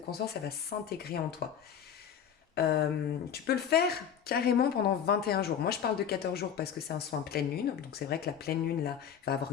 elle va s'intégrer en toi. Tu peux le faire carrément pendant 21 jours. Moi, je parle de 14 jours parce que c'est un soin pleine lune. Donc, c'est vrai que la pleine lune, là, va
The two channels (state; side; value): quieter; right; 8.5 dB